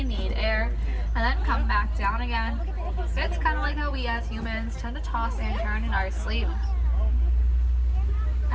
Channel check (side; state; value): both; identical; correlation 1.00